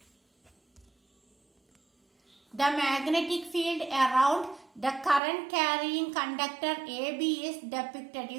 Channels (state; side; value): drops out; left; at 5.2 s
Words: The magnetic field around the current carrying conductor AB is depicted.